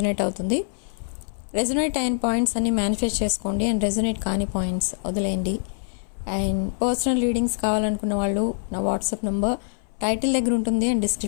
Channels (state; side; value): silent; right; 60 dB below the other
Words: అవుతుంది. రెజొనేట్ అయిన పాయింట్స్ అన్ని మేనిఫెస్ట్ చేసుకోండి అండ్ రెజొనేట్ కాని పాయింట్స్ వదిలేయండి. అండ్ పర్సనల్ రీడింగ్స్ కావాలనుకున్న వాళ్ళు నా వాట్సాప్ నెంబర్ టైటిల్ దగ్గర ఉంటుంది అండ్